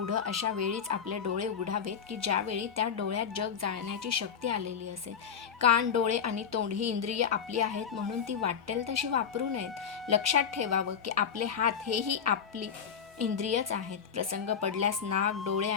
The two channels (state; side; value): quieter; right; 7.3 dB